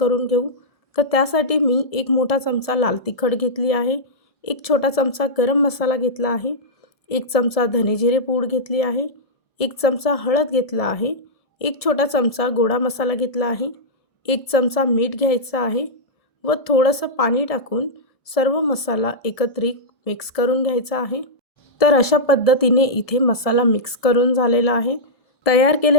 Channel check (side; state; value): right; late; 1.7 ms